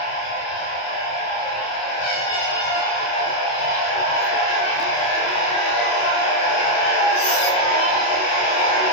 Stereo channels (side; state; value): right; late; 27 ms